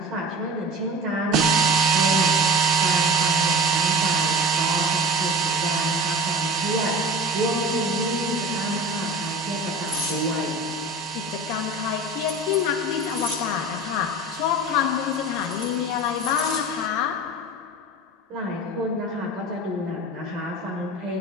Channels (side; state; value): both; normal; correlation 0.34